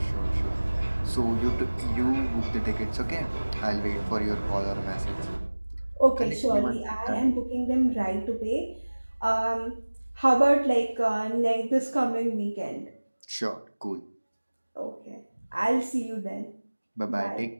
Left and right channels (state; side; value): inverted; both; correlation -1.00